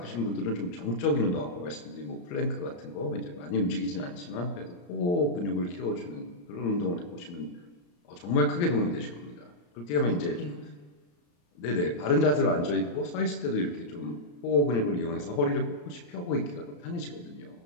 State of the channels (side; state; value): right; late; 34 ms